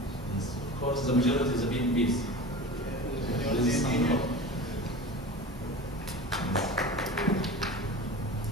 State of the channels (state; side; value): normal; both; correlation 0.33